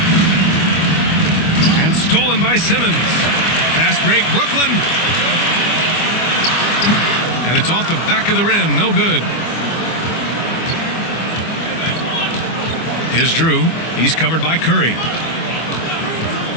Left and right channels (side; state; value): right; late; 25 ms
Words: And stolen by Simmons. Fast break, Brooklyn. And it's off the back of the rim. No good. Here's Drew. He's covered by Curry.